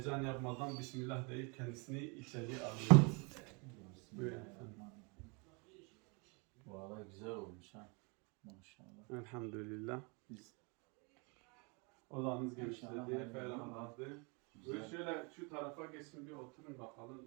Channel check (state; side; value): quieter; left; 31.9 dB